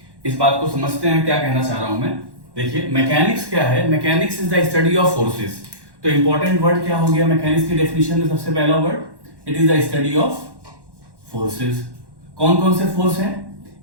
इस बात को समझते हैं क्या कहना चाह रहा हूं मैं. देखिए मैकेनिक्स क्या है. Mechanics is the study of forces. तो इंपॉर्टेंट वर्ड क्या हो गया मैकेनिक्स की डेफिनेशन में. सबसे पहला word, it is the study of forces. कौन कौन से फोर्स हैं?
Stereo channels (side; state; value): left; late; 1.1 ms